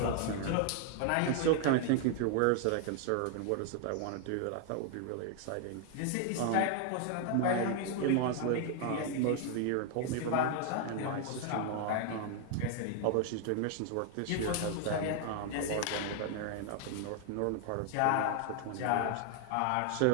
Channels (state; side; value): different; both; correlation 0.00